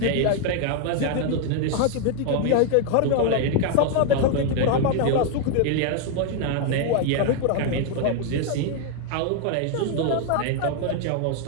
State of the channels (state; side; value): different; both; correlation 0.01